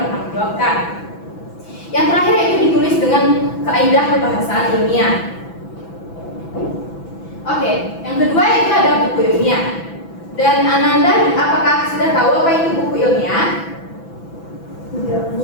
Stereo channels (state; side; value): late; right; 6.0 ms